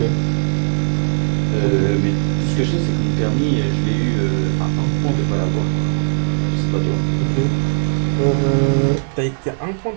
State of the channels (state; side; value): silent; left; 60 dB below the other